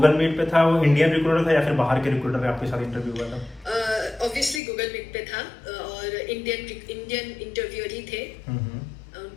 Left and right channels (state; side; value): drops out; right; at 4.6 s